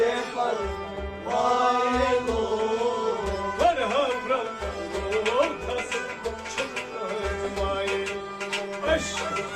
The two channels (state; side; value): identical; both; correlation 1.00